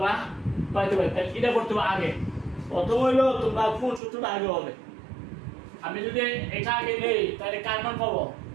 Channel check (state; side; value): drops out; left; at 4.0 s